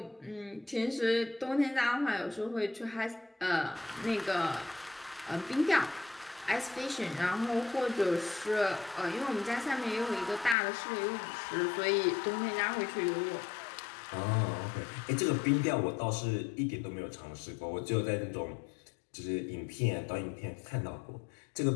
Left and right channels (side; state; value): right; drops out; at 10.6 s